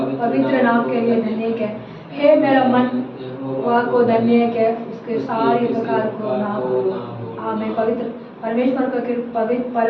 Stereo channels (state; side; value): identical; both; correlation 1.00